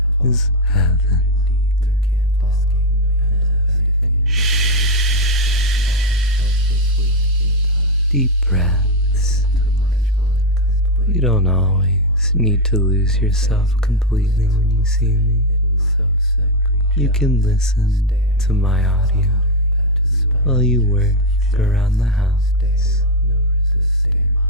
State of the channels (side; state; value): both; normal; correlation 0.06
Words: is heaven. Deep breaths. You don't always need to lose yourself completely when you see me. You can listen to my audio while you work around the house.